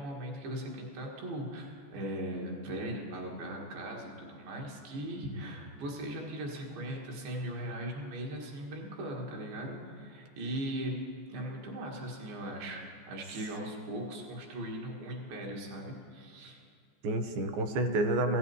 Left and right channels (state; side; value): late; left; 14 ms